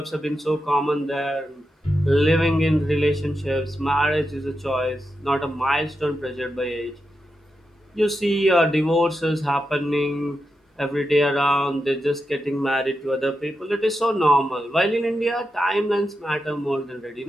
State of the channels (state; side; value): normal; both; correlation 0.88